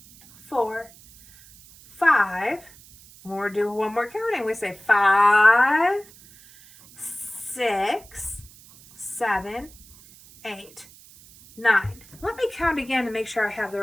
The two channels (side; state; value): right; noise; hiss, 23 dB below the sound